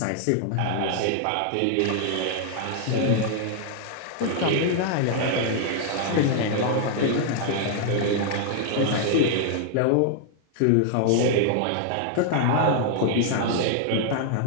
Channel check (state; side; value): different; both; correlation 0.00